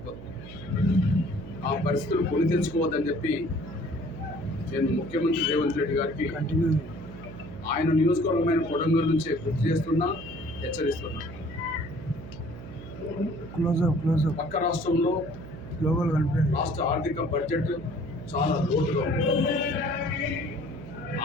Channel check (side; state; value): right; noise; hum, 13 dB below the sound